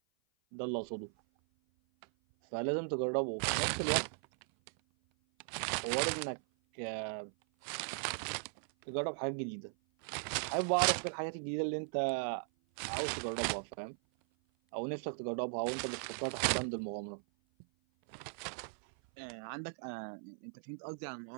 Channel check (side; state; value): left; silent; 52 dB below the other